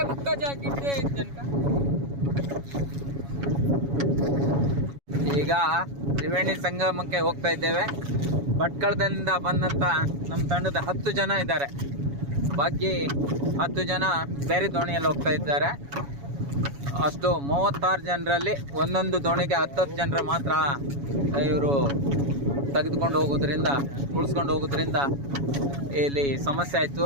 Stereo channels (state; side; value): late; left; 7.2 ms